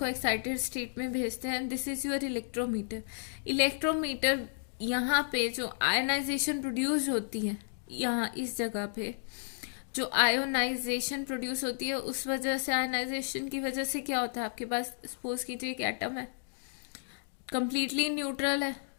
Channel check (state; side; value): silent; right; digital silence